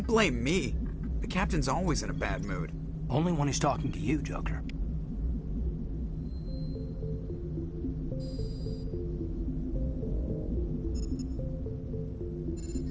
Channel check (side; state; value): both; identical; correlation 1.00